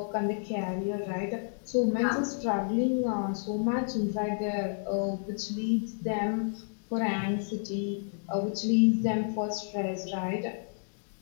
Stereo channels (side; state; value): right; silent; 58 dB below the other